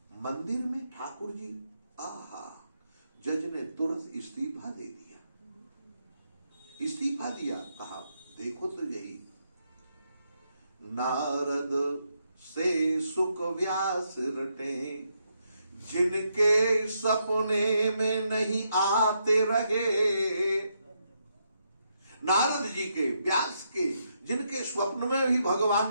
मंदिर में ठाकुर जी, आहा, जज ने तुरंत इस्तीफा दे दिया। इस्तीफा दिया, कहा देखो तो यही, नारद से सुख व्यास रटे, जिनके सपने में नहीं आते रहे। नारद जी के, व्यास के, जिनके स्वप्न में भी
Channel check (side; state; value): both; inverted; correlation -0.79